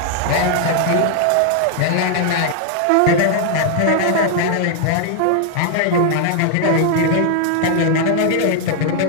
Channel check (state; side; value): different; both; correlation 0.00